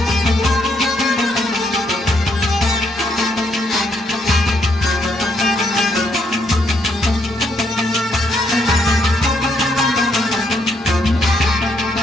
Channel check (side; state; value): both; normal; correlation 0.74